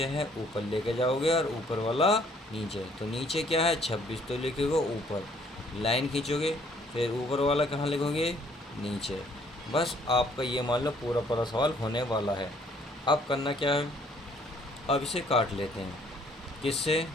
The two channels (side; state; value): both; normal; correlation 0.62